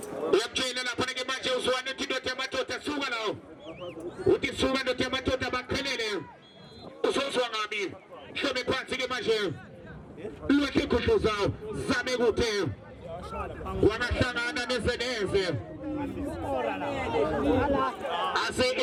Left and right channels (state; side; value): identical; both; correlation 1.00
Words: Uyakutshela lapha ke manje uzwane indoda yamadoda suka lawo uthi suka indoda yamadoda baqhelele uzozwa ngabi hlome phansi ke manje lwethe khudluza zame kuthe wangahlangana nezeneze ase